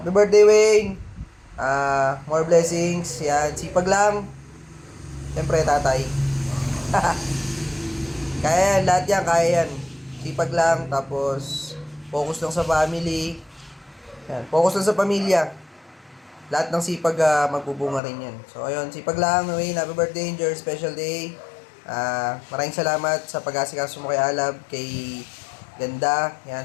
birthday, Wayne. More blessings. Yan, sipag lang. Siyempre, tatay. Kaya yan, lahat yan, kaya yan. Sipag lang, tapos focus lang sa family. Yan, focus lang sa pamilya. Lahat ng sipag magbubunga rin yan. So, ayun, sipag lang, Wayne. Happy birthday, enjoy your special day. Maraming salamat sa pag-asikaso mo kay Alab, kay Ganda, yan,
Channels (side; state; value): right; drops out; at 18.0 s